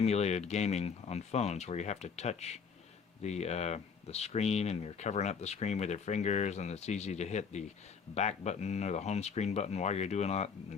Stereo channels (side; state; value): right; quieter; 6.0 dB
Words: gaming on phones, where you have to touch the screen and you're covering up the screen with your fingers, and it's easy to hit the back button or the home screen button while you're doing that